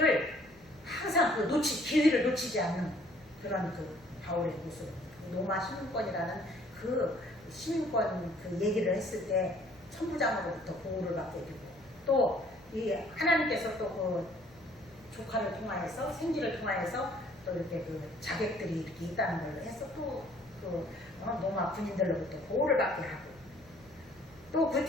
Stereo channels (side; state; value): left; noise; hum, 25 dB below the sound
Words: 항상 기회를 놓치지 않는 그런 바울의 모습. 로마 시민권이라는 시민권 얘기를 했을 때 천부장으로부터 보호를 받게 되고 또 이 하나님께서 또 조카를 통하여서 생기를 통하여서 또 이렇게 자객들이 이렇게 있다는 걸 해서 또 로마 군인들로부터 보호를 받게 하고 또 그